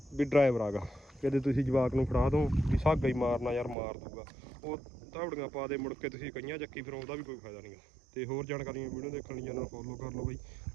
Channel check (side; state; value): left; drops out; at 3.8 s